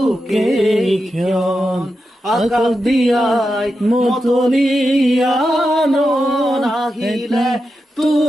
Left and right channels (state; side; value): normal; both; correlation 0.89